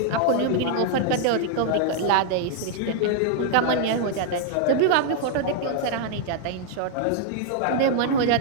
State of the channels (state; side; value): different; both; correlation 0.00